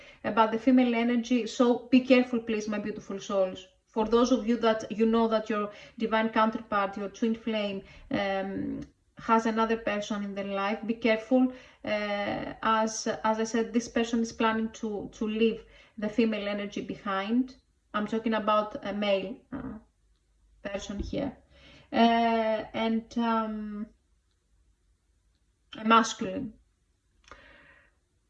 About the female energy, so be careful, please, my beautiful souls. For those of you that you know that your divine counterpart, your twin flame, has another person in their life, be careful. As I said, this person is planning to leave the female energy behind. I'm talking about a male person here, and a masculine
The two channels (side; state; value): both; identical; correlation 1.00